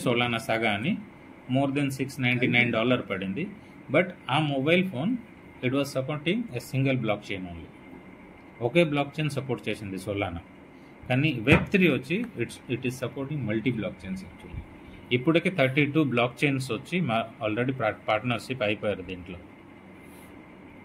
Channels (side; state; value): both; identical; correlation 1.00